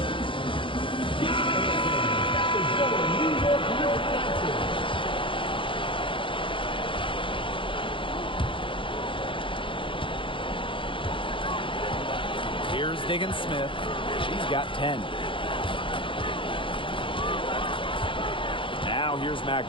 Here's Diggins Smith. She's got 10. Now here's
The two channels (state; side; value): late; right; 0.25 ms